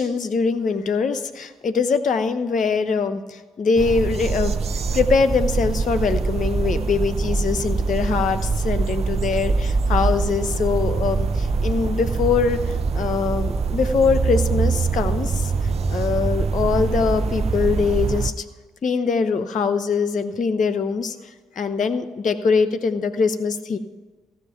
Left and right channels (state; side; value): normal; both; correlation 0.72